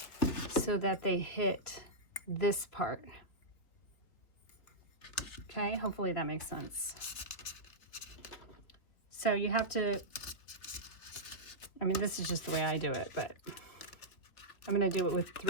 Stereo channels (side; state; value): right; late; 3.2 ms